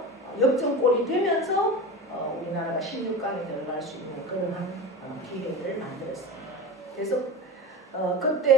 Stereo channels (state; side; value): normal; both; correlation 0.29